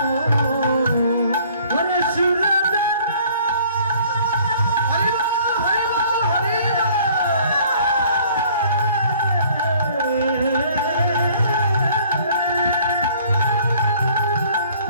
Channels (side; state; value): both; inverted; correlation -0.55